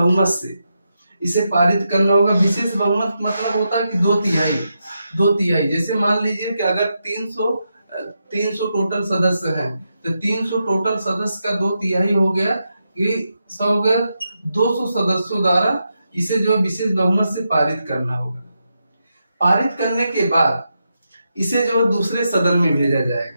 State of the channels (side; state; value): both; inverted; correlation -0.86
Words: से इसे पारित करना होगा। विशेष बहुमत मतलब होता है कि 2/3। जैसे मान लीजिए कि अगर 300 टोटल सदस्य हैं तो 300 टोटल सदस्य का 2/3 हो गया, ये 200 सदस्यों द्वारा इसे जो विशेष बहुमत से पारित करना होगा। पारित करने के बाद इसे जो दूसरे सदन में भेजा